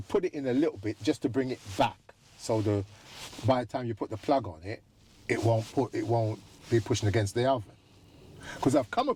put it in a little bit just to bring it back, so by the time you put the plug on it, it won't be pushing against the oven. Because I've come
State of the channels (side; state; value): both; identical; correlation 1.00